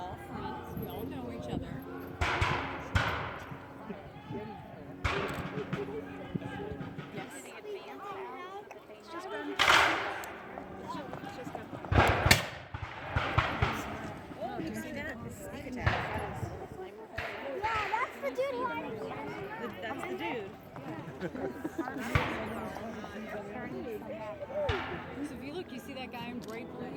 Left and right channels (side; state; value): both; identical; correlation 1.00